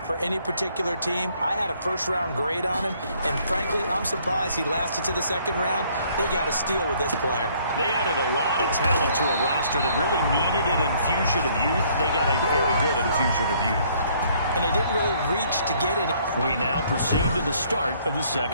for any particular team, I had a first-round grade on him. And frankly, I'm surprised he lasted to the second round. They got a steal with this player. They added a lot of talent to a roster that really needed an infusion of youth. They got a very good infusion of youth. And they didn't really reach to get it. We now proceed to the start of the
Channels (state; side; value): inverted; both; correlation -0.63